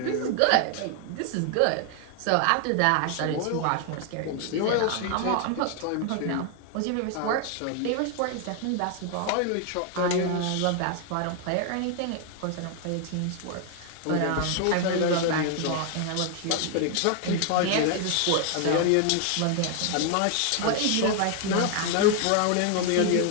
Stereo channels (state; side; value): different; both; correlation 0.00